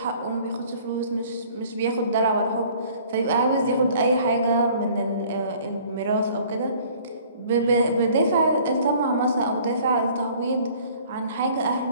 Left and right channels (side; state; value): both; inverted; correlation -0.53